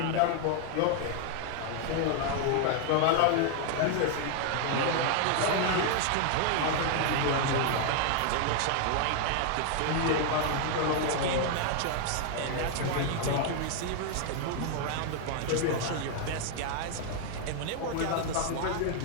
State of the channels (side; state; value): both; different; correlation 0.00